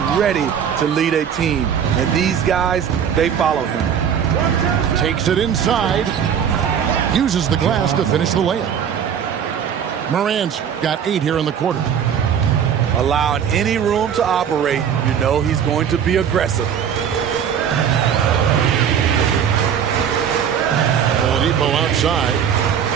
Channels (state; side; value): quieter; left; 8.2 dB